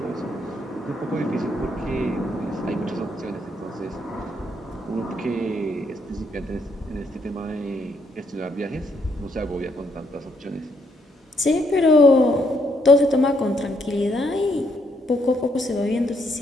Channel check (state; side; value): normal; both; correlation 0.73